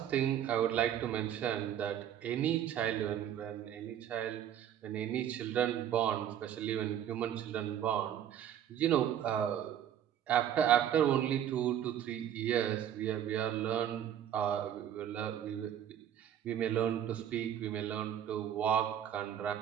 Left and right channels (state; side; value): quieter; left; 10.1 dB